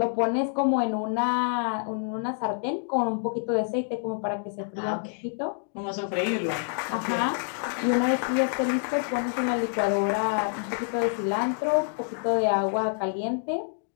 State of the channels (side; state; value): right; silent; 59 dB below the other